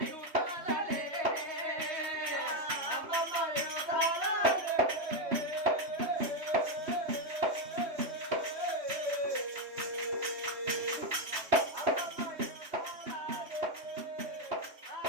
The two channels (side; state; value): left; late; 3.2 ms